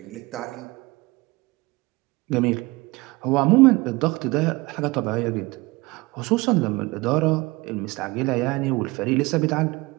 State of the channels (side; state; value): left; quieter; 23.0 dB